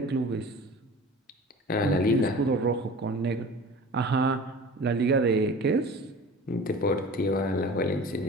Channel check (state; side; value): normal; both; correlation 0.40